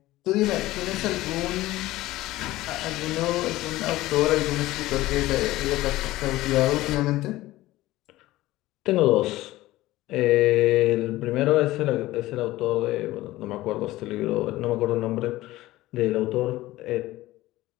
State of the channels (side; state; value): right; quieter; 17.1 dB